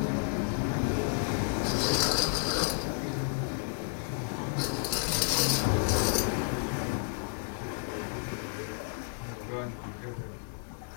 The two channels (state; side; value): silent; right; 57 dB below the other